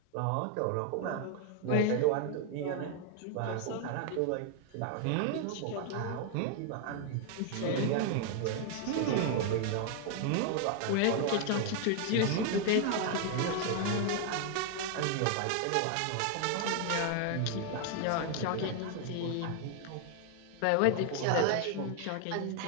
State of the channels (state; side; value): different; both; correlation 0.00